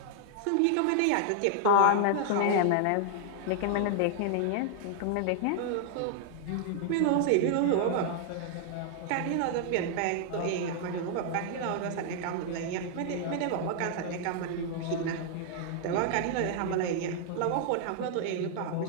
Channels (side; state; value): both; different; correlation 0.00